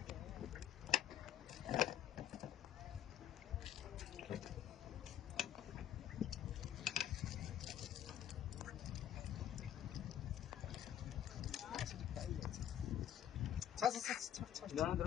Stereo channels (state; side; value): quieter; right; 10.4 dB